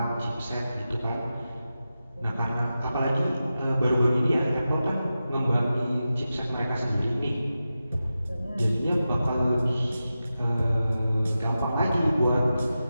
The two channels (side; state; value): both; inverted; correlation -0.92